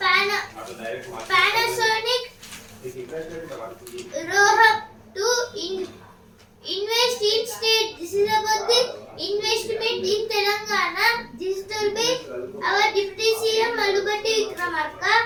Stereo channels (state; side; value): identical; both; correlation 1.00